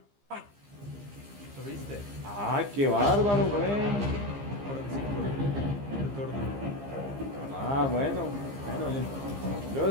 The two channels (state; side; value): late; left; 15 ms